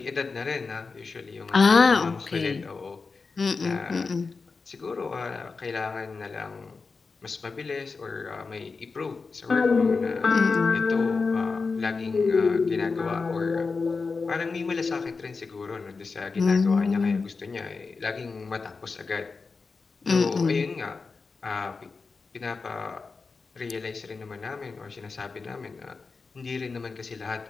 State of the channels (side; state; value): right; quieter; 4.5 dB